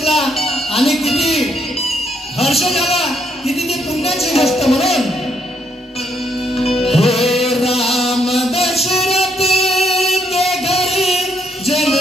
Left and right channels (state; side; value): normal; both; correlation 0.73